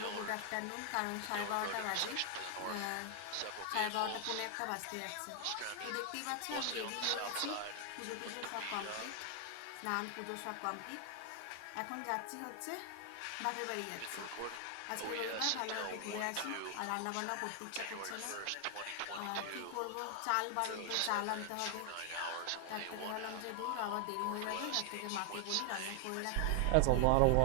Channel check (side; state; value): both; different; correlation 0.00